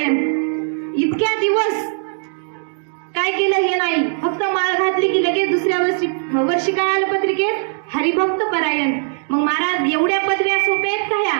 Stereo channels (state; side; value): silent; left; digital silence